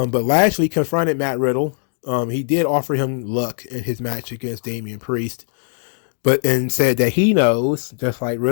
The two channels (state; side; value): silent; right; 60 dB below the other